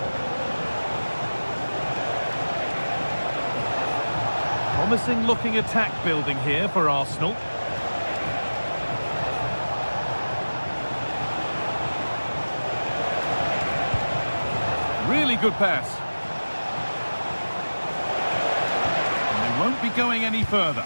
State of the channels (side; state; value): both; inverted; correlation -1.00